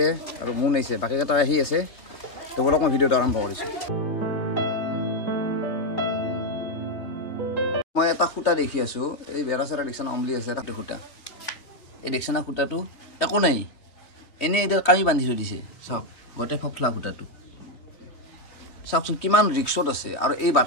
আৰু মুন আছে বাকীকেইটা আহি আছে তো বলক মই ভিডিঅ'টো আৰম্ভ কৰিছোঁ মই এটা খুঁটা দেখি আছোঁ এই বেৰা চেৰা দেখিছানা অমলি আছে এটা খুঁটা এই দেখিছানা খুঁটাটো একো নাই এনেই এতিয়া কামি বান্ধি থৈ দিছে চাওক গোটেই ফফলা খুঁটাটো চাওকচোন কিমান ৰিক্সত আছে আৰু এই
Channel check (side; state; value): right; late; 3.2 ms